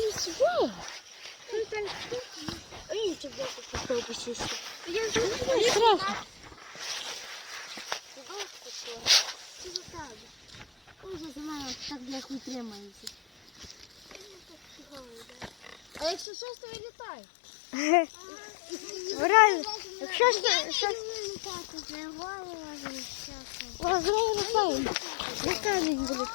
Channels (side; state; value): right; drops out; at 16.2 s